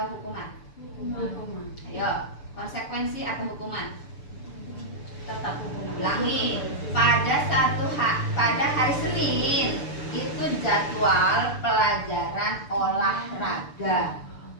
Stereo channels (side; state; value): right; late; 6.9 ms